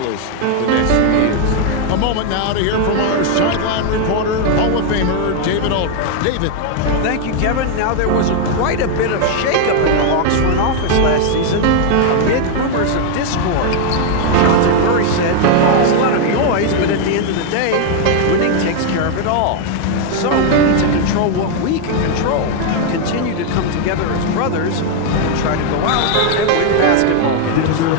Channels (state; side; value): different; both; correlation 0.00